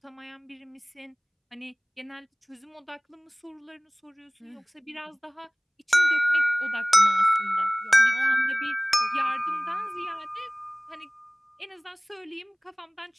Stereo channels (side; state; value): both; identical; correlation 1.00